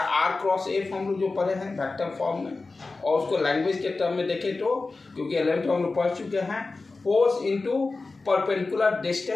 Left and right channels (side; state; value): right; quieter; 3.7 dB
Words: क्रॉस एफ हम लोग जो पढ़े हैं वेक्टर फॉर्म में, और उसको लैंग्वेज के टर्म में देखें तो, क्योंकि 11th में हम लोग पढ़ चुके हैं, फोर्स इनटू परपेंडिकुलर